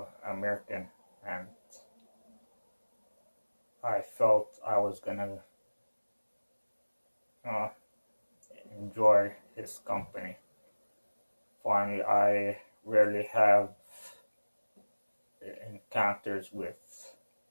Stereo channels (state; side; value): inverted; both; correlation -1.00